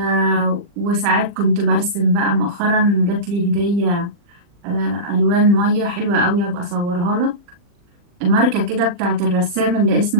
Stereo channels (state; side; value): late; left; 40 ms